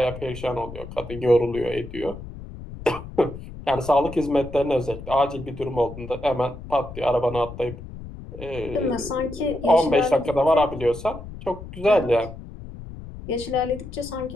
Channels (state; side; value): noise; left; rumble, 13 dB below the sound